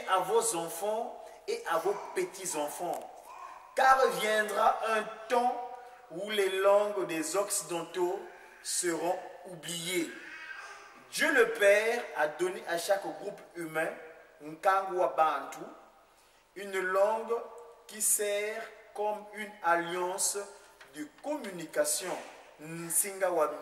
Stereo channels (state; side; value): identical; both; correlation 1.00